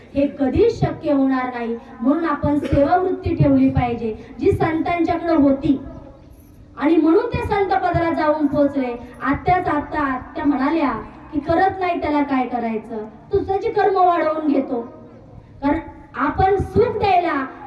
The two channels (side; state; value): both; identical; correlation 1.00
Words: हे कधीच शक्य होणार नाही. म्हणून आपण सेवा वृत्ती ठेवली पाहिजे, जी संतांच्याकडे होती. आणि म्हणून ते संत पदाला जाऊन पोहोचले. आत्या म्हणाल्या की करत नाही त्याला काय करायचं, तू त्याची कर्म वाढवून घेतो. कारण आपण सुख द्यायला